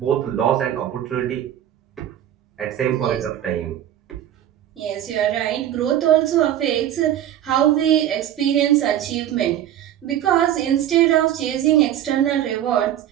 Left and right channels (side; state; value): left; quieter; 11.4 dB